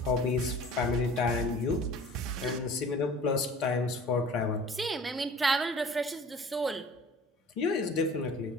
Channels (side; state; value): both; normal; correlation 0.45